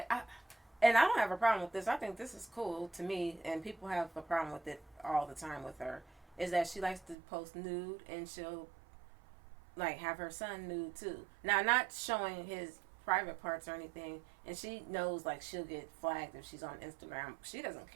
and I don't have a problem with this. I think this is cool to me, and people have a problem with it all the time with her, is that she likes to post nude, and she'll like have her son nude too. Now, not showing his private parts or anything, and she knows like she'll get flagged if she's on Instagram. She doesn't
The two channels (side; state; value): left; drops out; at 7.2 s